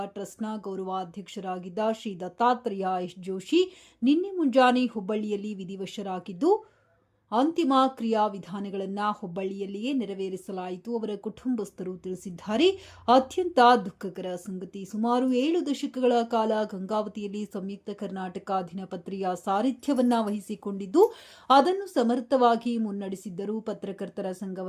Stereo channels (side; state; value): both; identical; correlation 1.00